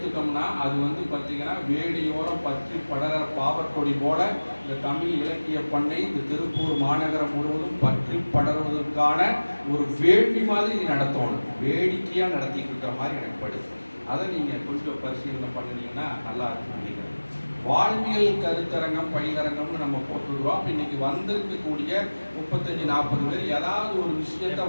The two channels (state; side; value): inverted; both; correlation -1.00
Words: அது வந்து பார்த்தீங்கன்னா வேடியோரம் பற்றி படர பாவற்கொடி போல இந்த தமிழ் இலக்கிய பண்ணை இந்த திருப்பூர் மாநகரம் முழுவதும் பற்றி படர்வதற்கான ஒரு வேள்வி மாதிரி நடத்தணும். வேடிக்கையாக நடத்திட்டு இருக்கிற மாதிரி எனக்கு படுது. அதை நீங்கள் கொஞ்சம் பரிசீலனை பண்ணினீங்கன்னா நல்லா இருக்கும் நினைக்கிறேன். வாழ்வியல் கருத்தரங்கம் பயிலரங்கம்னு நம்ம போட்டுருவோம். அப்போ இன்னைக்கு வந்திருக்கக்கூடிய 35-40 பேர் ஏதாவது ஒரு விஷயத்த